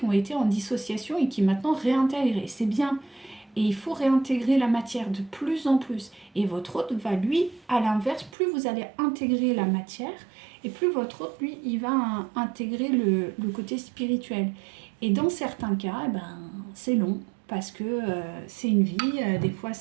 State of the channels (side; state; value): left; drops out; at 8.3 s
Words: ont été en dissociation et qui maintenant réintègrent. Et c'est bien. Et il faut réintégrer la matière de plus en plus. Et votre autre va, lui, à l'inverse, plus vous allez intégrer la matière, et plus votre autre, lui, il va intégrer le côté spirituel. Et dans certains cas, c'est long, parce que c'est une vie, des fois